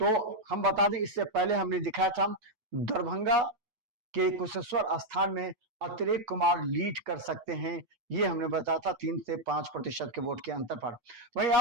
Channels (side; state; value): left; late; 9.3 ms